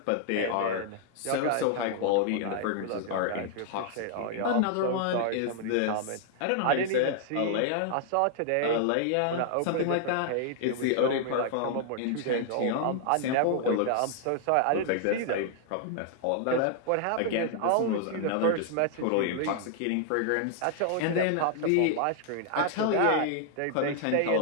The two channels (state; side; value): different; both; correlation -0.01